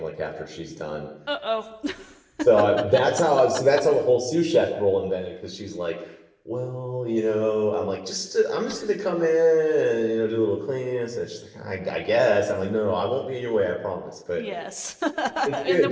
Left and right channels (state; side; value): identical; both; correlation 1.00